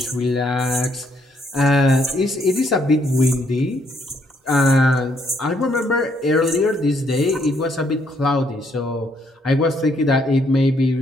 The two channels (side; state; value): both; normal; correlation 0.71